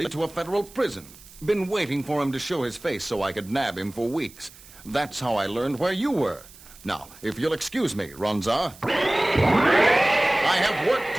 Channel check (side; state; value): right; noise; hiss, 21 dB below the sound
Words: to a federal prison. Been waiting for him to show his face so I could nab him for weeks. That's how I learned where you were. Now, if you'll excuse me, Ronza, I have work